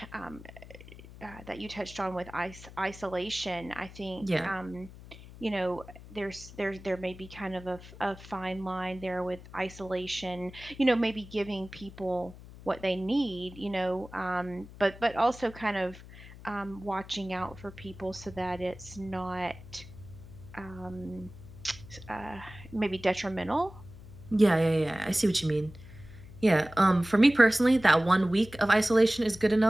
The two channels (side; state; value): left; noise; hum, 17 dB below the sound